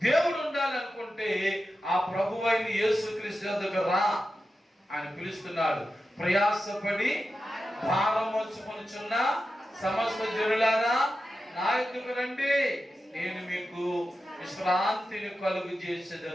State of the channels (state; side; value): normal; both; correlation 0.91